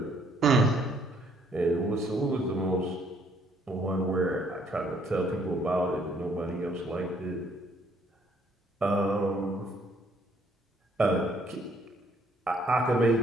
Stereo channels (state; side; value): normal; both; correlation 0.66